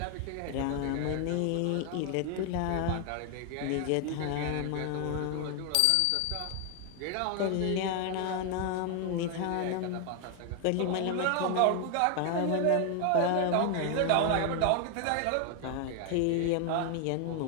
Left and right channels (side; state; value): both; different; correlation 0.00